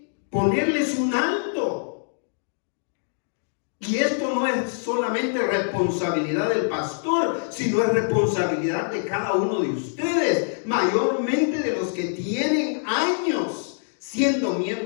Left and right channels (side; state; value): right; silent; digital silence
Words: ponerles un alto. Y esto no es solamente responsabilidad del pastor, sino es responsabilidad de cada uno de ustedes, mayormente de los que tienen años siendo